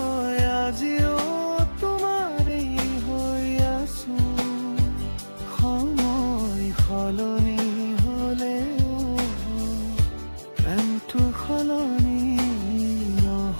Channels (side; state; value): both; inverted; correlation -1.00